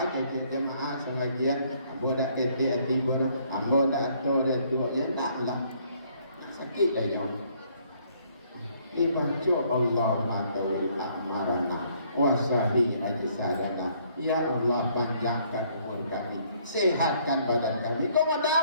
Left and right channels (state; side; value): inverted; both; correlation -0.65